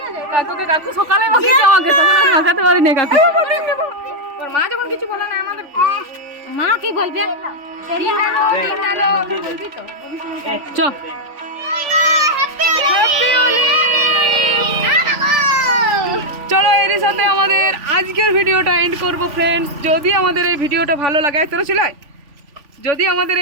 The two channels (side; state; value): left; late; 3.5 ms